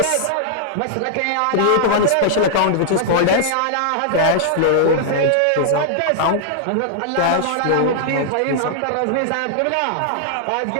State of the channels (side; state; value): both; different; correlation -0.01